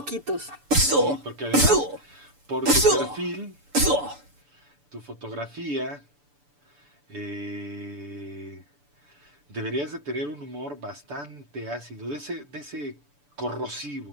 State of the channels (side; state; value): left; late; 6.9 ms